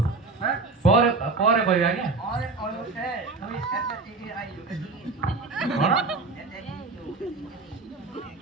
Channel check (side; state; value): left; quieter; 3.8 dB